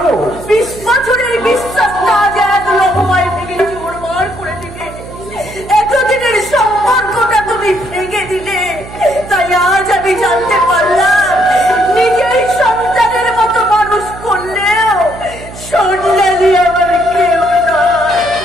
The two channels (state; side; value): noise; right; hum, 15 dB below the sound